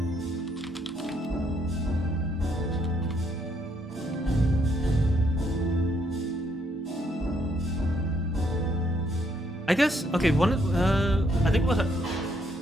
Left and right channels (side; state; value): both; normal; correlation 0.72